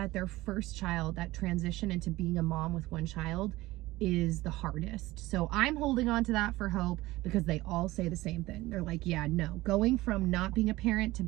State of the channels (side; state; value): left; quieter; 18.6 dB